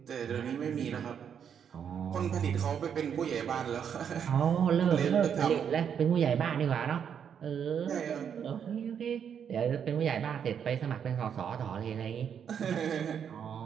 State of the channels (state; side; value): quieter; left; 7.9 dB